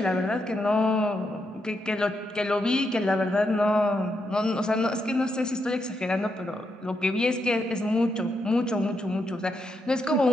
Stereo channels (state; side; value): normal; both; correlation 0.82